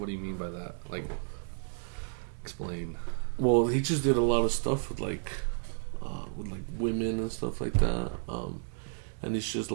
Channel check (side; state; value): left; silent; digital silence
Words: do you mean by that? Like, explain. Well, he just did a lot of stuff with women and stuff like that. And it's just